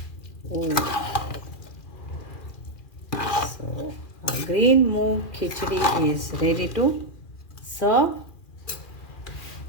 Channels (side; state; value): right; late; 2.4 ms